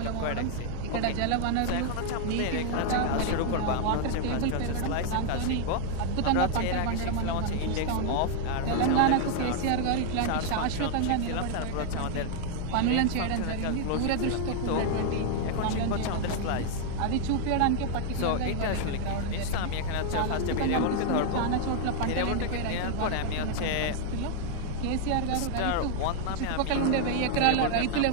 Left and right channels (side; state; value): both; different; correlation 0.00